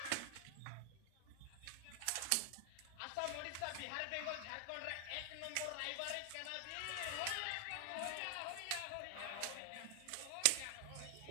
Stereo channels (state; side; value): different; both; correlation 0.00